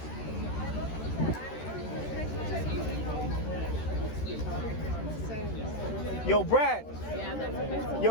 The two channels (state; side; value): late; right; 13 ms